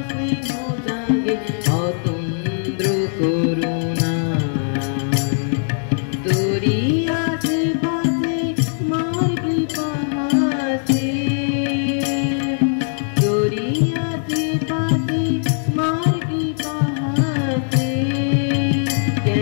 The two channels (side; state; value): right; silent; digital silence